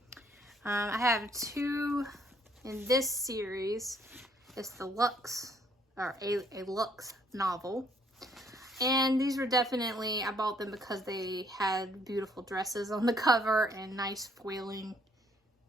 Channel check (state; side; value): normal; both; correlation 0.65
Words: I have 2 in this series. It's the Lux, or a Lux novel. And these were definitely, I bought them because they had beautiful dresses on the cover and nice foiling.